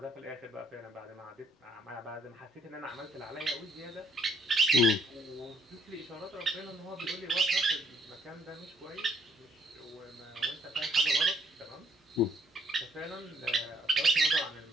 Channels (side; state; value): both; normal; correlation 0.67